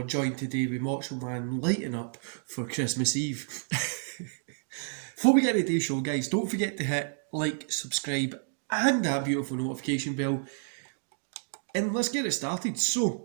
joined today with Macho Man lighting up for Christmas Eve. Before we get into today's show, guys, don't forget to hit like, subscribe and that beautiful notification bell. And let's get it started. So,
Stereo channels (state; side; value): silent; left; digital silence